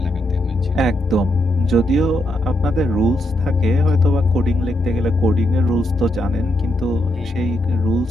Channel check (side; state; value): both; normal; correlation 0.81